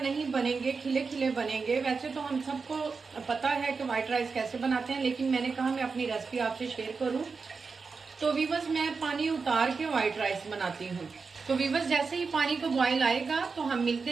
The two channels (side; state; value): left; quieter; 4.8 dB